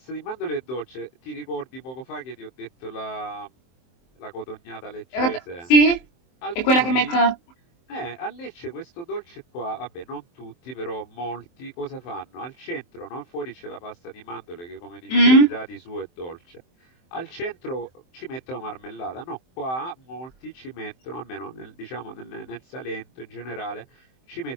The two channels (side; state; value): right; late; 23 ms